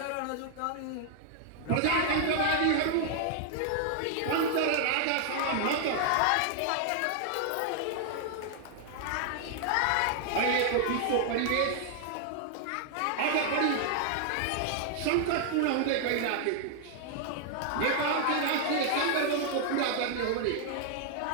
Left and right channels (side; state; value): both; different; correlation 0.00